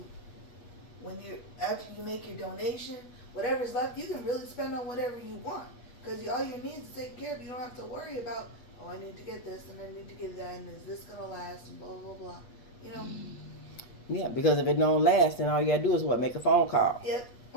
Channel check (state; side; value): late; right; 8.2 ms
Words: after you make your donation, whatever's left, you can really spend on whatever you want. Because all your needs are taken care of. You don't have to worry about, oh, I need to get this and I need to get that and is this going to last and blah, blah, blah. You know? Yeah, because if it don't last, then all you got to do is what? Make a phone call. Yep.